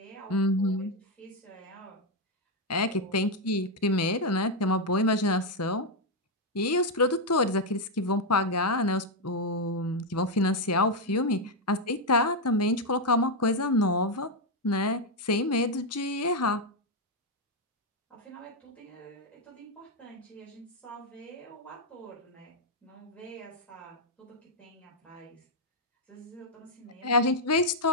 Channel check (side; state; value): both; normal; correlation 0.03